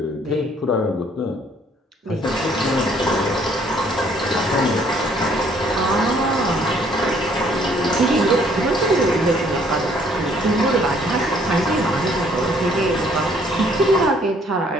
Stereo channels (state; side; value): normal; both; correlation 0.62